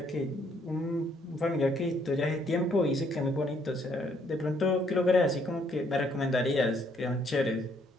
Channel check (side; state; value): both; normal; correlation 0.68